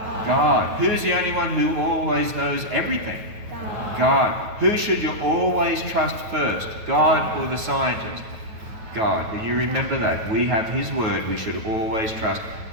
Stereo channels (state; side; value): late; left; 9.2 ms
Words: God. Who's the only one who always knows everything? God. Who should you always trust first? God or the scientist? God. And you remember that. We have His word. We should always trust